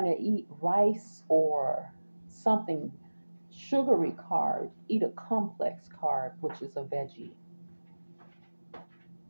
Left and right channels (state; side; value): inverted; both; correlation -1.00